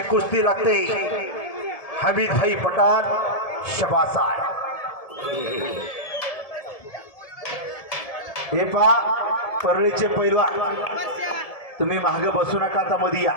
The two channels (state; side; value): late; right; 1.7 ms